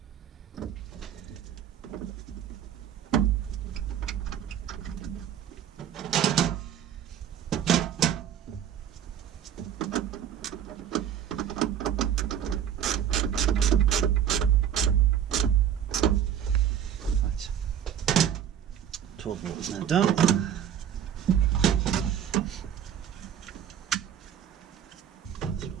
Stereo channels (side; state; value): left; quieter; 9.4 dB